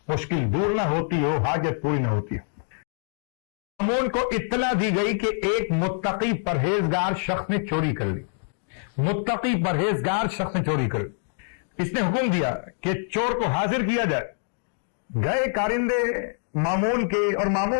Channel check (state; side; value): silent; right; digital silence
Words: مشکل دور نہ ہوتی ہو، حاجت پوری نہ ہوتی ہو، مامون کو اطلاع دی گئی کہ ایک متقی پرہیزگار شخص نے چوری کر لی، متقی پرہیزگار شخص نے چوری کر لی۔ اس نے حکم دیا کہ چور کو حاضر کیا جائے۔ گئے کارندے مامون کے اور